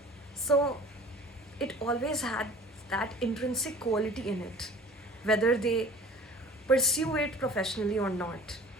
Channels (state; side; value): normal; both; correlation 0.45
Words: So it always had that intrinsic quality in it, whether they pursue it professionally or not.